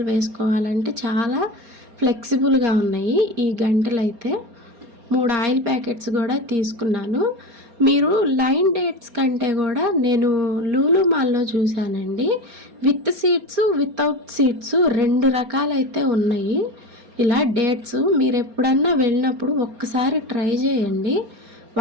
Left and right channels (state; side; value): late; left; 4.3 ms